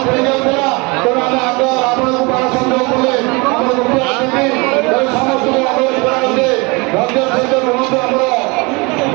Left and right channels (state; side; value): quieter; left; 27.3 dB